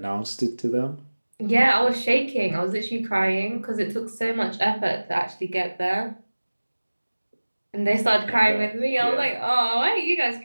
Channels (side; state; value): both; inverted; correlation -1.00